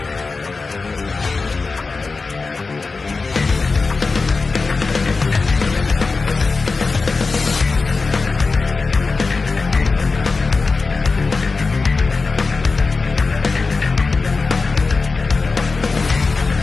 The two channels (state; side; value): quieter; right; 4.1 dB